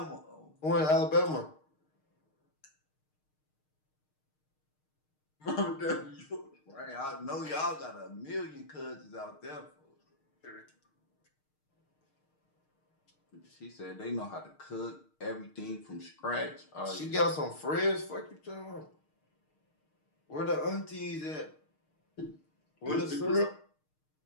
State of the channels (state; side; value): late; right; 6.5 ms